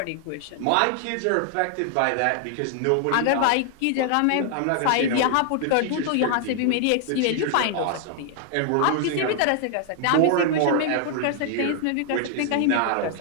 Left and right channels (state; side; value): different; both; correlation 0.00